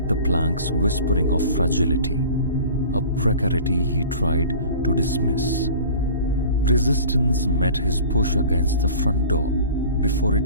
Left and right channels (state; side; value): inverted; both; correlation -0.42